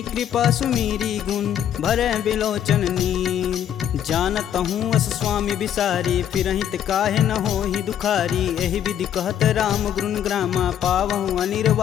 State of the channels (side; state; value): right; quieter; 9.9 dB